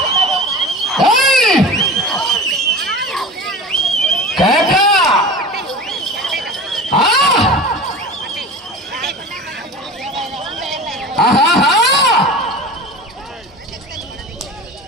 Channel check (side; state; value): both; normal; correlation 0.34